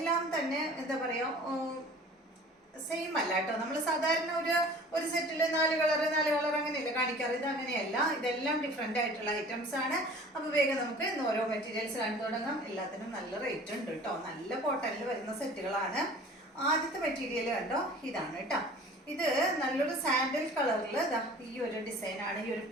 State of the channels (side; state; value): both; normal; correlation 0.46